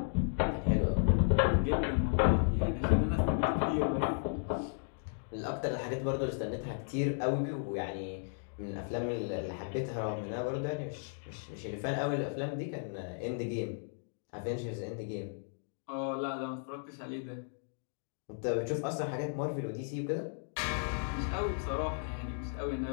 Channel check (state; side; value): silent; right; digital silence